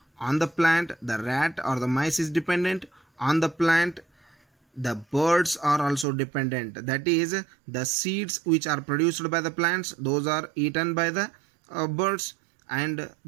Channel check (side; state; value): left; drops out; at 6.1 s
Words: on the plant the rat or the mice is dependent, on the plant the birds are also dependent. That is, the seeds which are produced by the plants, those are eaten by the birds, and